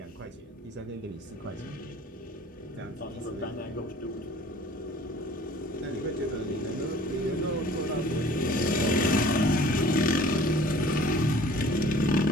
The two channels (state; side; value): normal; both; correlation 0.49